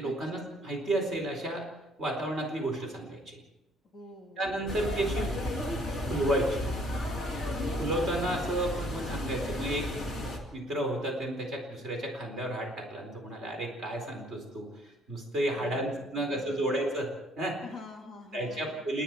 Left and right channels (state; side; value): normal; both; correlation 0.61